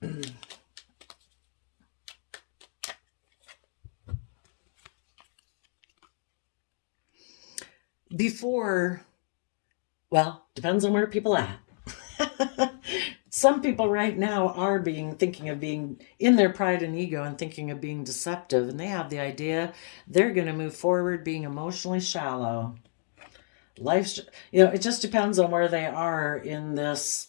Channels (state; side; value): silent; right; digital silence